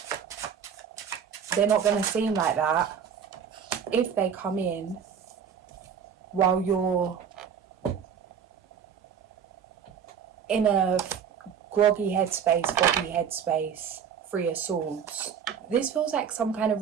they're not going to seem like that if they come in while you're in a groggy headspace, 3 of Swords. This feels like some kind of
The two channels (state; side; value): quieter; left; 7.6 dB